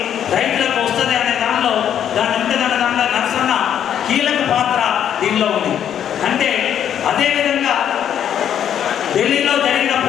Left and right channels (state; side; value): quieter; right; 9.5 dB